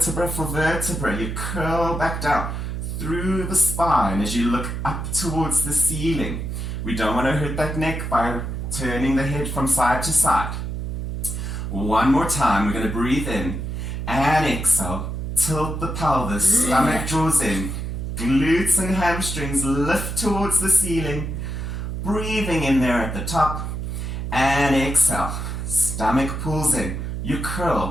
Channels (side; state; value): right; noise; hum, 4 dB below the sound